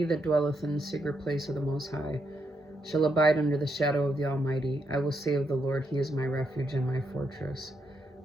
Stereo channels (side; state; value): both; normal; correlation 0.79